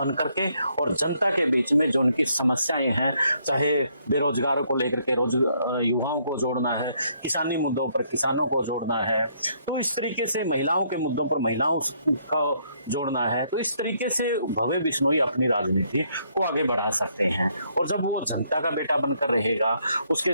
करके और जनता के बीच में जो उनकी समस्याएं हैं, चाहे बेरोजगारों को लेकर के युवाओं को जोड़ना है, किसानी मुद्दों पर किसानों को जोड़ना है, तो इस तरीके से महिलाओं के मुद्दों पर महिलाओं को जोड़ना है, तो इस तरीके से भव्य बिश्नोई अपनी राजनीति को आगे बढ़ा सकते हैं। और जब वो जनता का बेटा बनकर रहेगा, उसके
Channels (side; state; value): both; inverted; correlation -0.70